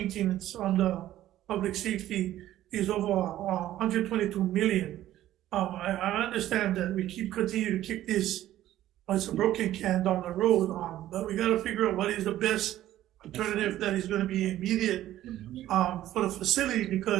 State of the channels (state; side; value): quieter; left; 13.5 dB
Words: on the public safety is over 122 million. I understand that we continue to kick this as a broken can down the road, but we got to figure out what is the best alternative that is going to be immediate for the facility,